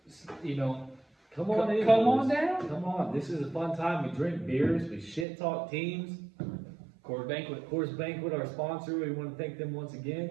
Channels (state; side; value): drops out; left; at 5.2 s